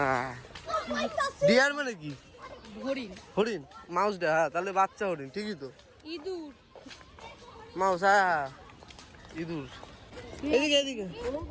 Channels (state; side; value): identical; both; correlation 1.00